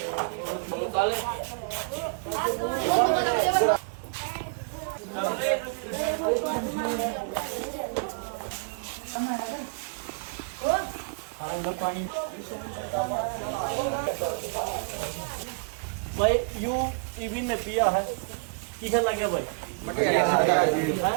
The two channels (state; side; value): quieter; left; 39.5 dB